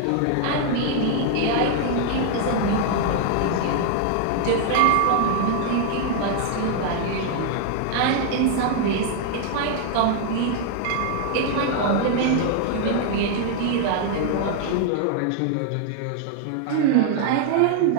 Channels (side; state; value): both; different; correlation 0.00